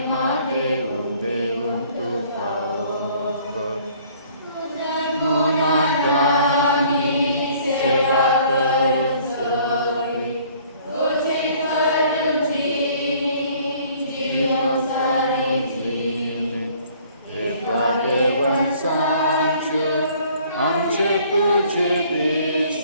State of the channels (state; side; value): inverted; both; correlation -0.57